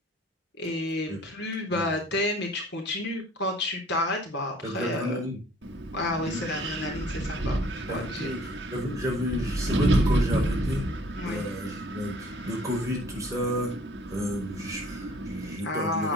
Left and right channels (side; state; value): both; normal; correlation 0.55